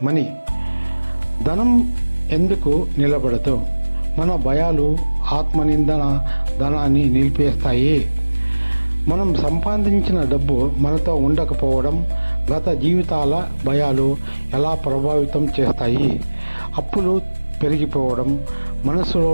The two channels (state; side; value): inverted; both; correlation -1.00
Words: మనీ. ధనం ఎందుకు నిలబడదు? మన భయాలు, ఆత్మనిందన ధనాన్ని నిలిపేస్తాయి. మనం సంపాదించిన డబ్బు మనతో ఉండకపోవడం, గత జీవితాల భయాలు ఎలా ప్రభావితం చేస్తాయి? అప్పులు పెరిగిపోవడం,